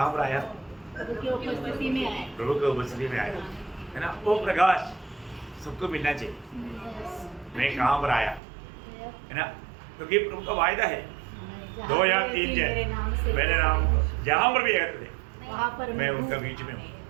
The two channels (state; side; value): drops out; left; at 8.4 s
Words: पर आया? प्रभु की उपस्थिति में आए। प्रभु की उपस्थिति में आया है ना। वो प्रकाश सबको मिलना चाहिए। मैं कहाँ पर आया है ना, क्योंकि प्रभु का वायदा है 2 या 3 जन मेरे नाम जहाँ पर भी एकत्र थे वहाँ पर मैं उनका बीच में हूँ।